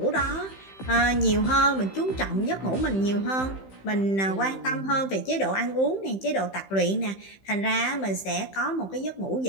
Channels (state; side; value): late; right; 15 ms